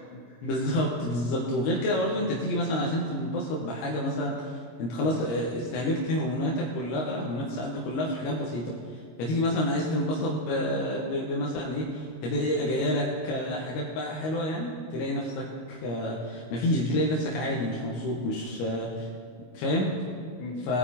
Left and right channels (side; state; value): right; late; 25 ms